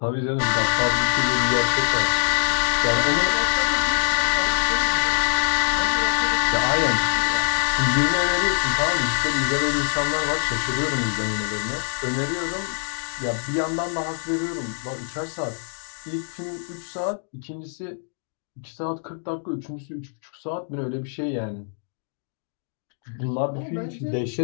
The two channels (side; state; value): right; silent; digital silence